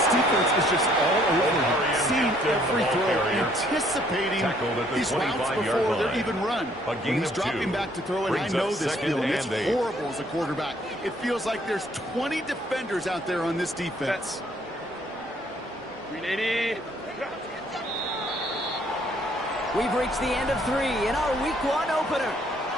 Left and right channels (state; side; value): normal; both; correlation 0.64